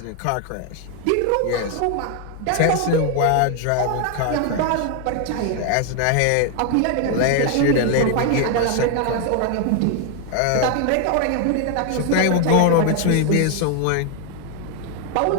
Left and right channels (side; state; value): both; different; correlation 0.01